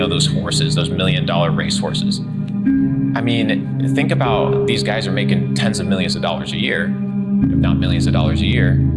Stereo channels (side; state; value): both; identical; correlation 1.00